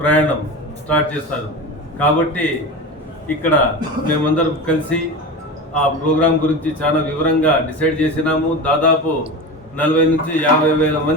స్టార్ట్ చేస్తారు. కాబట్టి ఇక్కడ మేమందరం కలిసి ఆ ప్రోగ్రాం గురించి చాలా వివరంగా డిసైడ్ చేసినాము. దాదాపు 40 నుంచి 50 వేల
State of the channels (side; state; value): both; normal; correlation 0.27